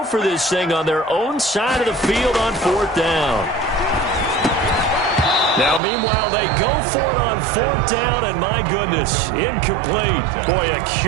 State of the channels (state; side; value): drops out; left; at 5.8 s